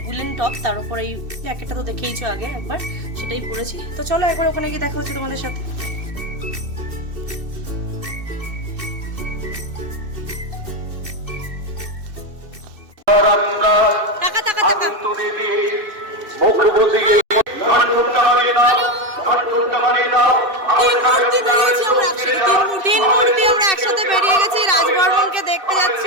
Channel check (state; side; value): late; left; 2.6 ms